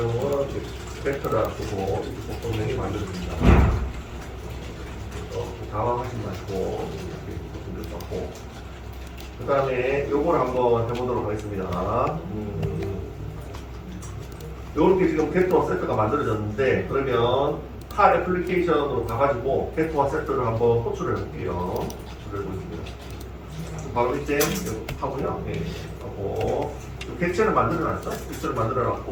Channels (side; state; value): both; identical; correlation 1.00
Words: 벡터를 쓰고 속성명이 만들어집니다. 당황하지 마시고 이렇게 썼고, 그 다음에 요걸 한번 해보도록 하겠습니다. 요렇게 지금 벡터와 세트가 만들어졌는데, 그러면 칼 애플리케이션으로 가가지고 벡터와 세트를 한번 호출을 해볼게요. 호출을 해보겠습니다. 바로 밑에 하고요. 하고 객체를 만들어놨죠. 객체를